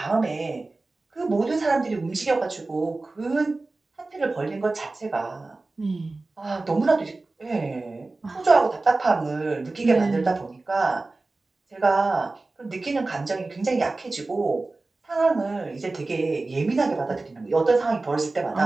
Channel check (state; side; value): quieter; left; 3.3 dB